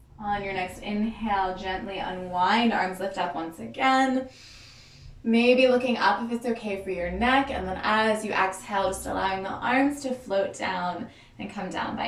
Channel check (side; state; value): both; identical; correlation 1.00